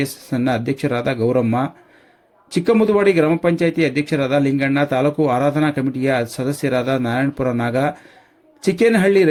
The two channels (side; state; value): both; identical; correlation 1.00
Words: ಅಧ್ಯಕ್ಷರಾದ ಗೌರಮ್ಮ, ಚಿಕ್ಕಮುದುವಾಡಿ ಗ್ರಾಮ ಪಂಚಾಯಿತಿ ಅಧ್ಯಕ್ಷರಾದ ಲಿಂಗಣ್ಣ, ತಾಲೂಕು ಆರಾಧನಾ ಕಮಿಟಿಯ ಸದಸ್ಯರಾದ ನಾರಾಯಣಪುರ ನಾಗ, ಚಿಕ್ಕೇನಹಳ್ಳಿ